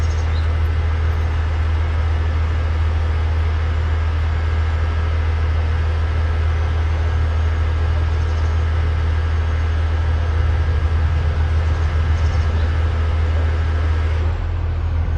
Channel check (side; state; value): both; identical; correlation 1.00